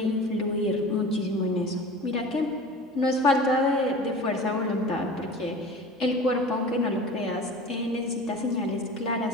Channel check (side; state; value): both; normal; correlation 0.37